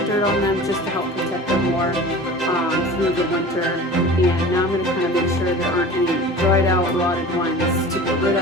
dirt on them just to help protect them more through the winter, and now I'm going to kind of make sure there aren't any dried out, rotted ones to get rid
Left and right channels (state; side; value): normal; both; correlation 0.39